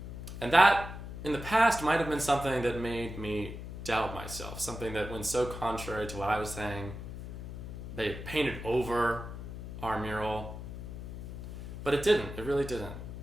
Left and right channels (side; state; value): left; noise; hum, 9 dB below the sound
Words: And that, in the past, might have been something that made me doubt myself, something that went so contrary to what I was saying. They painted over our mural. But it didn't. It really didn't.